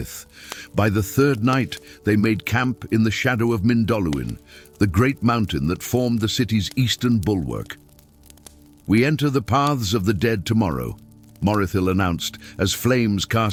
By the third night, they made camp in the shadow of Mindoluin, the great mountain that formed the city's eastern bulwark. "We enter the paths of the dead tomorrow," Morithil announced as flames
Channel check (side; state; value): both; identical; correlation 1.00